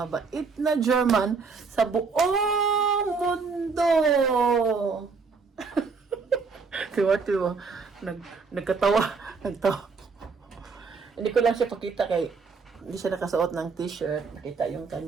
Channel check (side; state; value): left; quieter; 4.8 dB